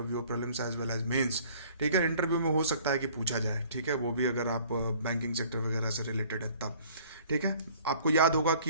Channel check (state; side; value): inverted; both; correlation -0.54